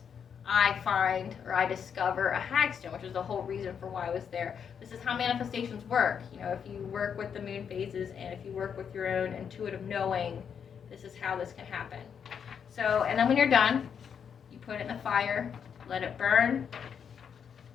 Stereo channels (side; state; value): right; quieter; 7.4 dB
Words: I find or I discover a hagstone, which is the whole reason for why I was there. This is how manifestations work. If you work with the moon phases and if you work with your own intuitive knowing, this is how this can happen. So, and then when you're done, you put it in the fire, let it burn.